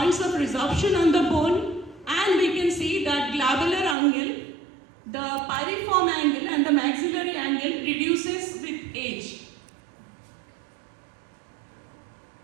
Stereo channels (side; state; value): left; drops out; at 4.0 s